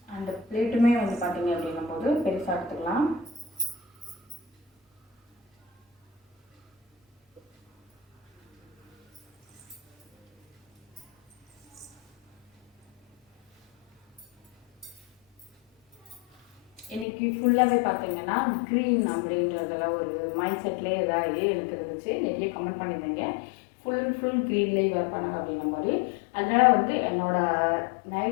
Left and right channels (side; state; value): right; drops out; at 17.1 s